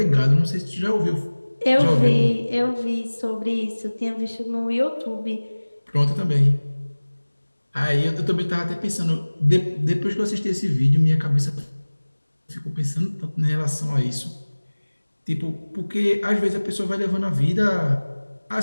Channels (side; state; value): both; inverted; correlation -1.00